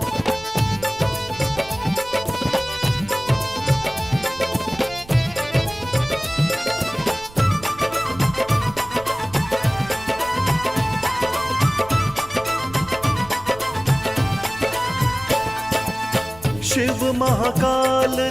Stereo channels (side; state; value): right; noise; rumble, 20 dB below the sound